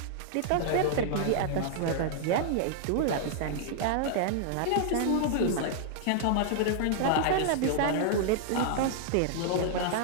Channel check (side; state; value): both; different; correlation -0.01